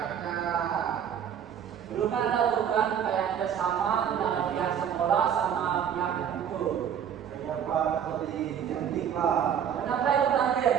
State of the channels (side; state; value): left; quieter; 8.6 dB